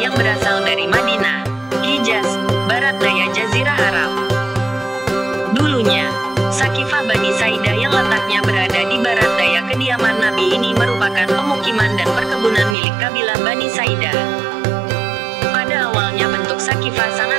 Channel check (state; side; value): drops out; left; at 12.8 s